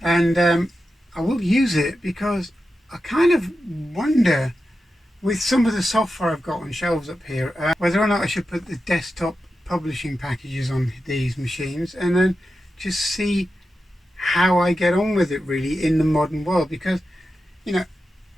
and I will use it because I kind of wonder, with some of the software I've got on shelves up here, whether or not I should put the desktop publishing packages on these machines and then just see how I get on with it really in the modern world. Because, you know,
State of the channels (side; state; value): both; normal; correlation 0.91